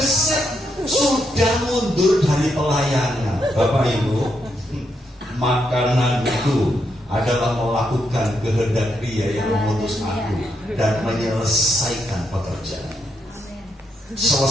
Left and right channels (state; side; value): normal; both; correlation 0.80